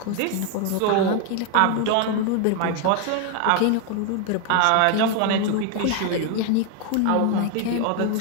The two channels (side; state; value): both; different; correlation 0.01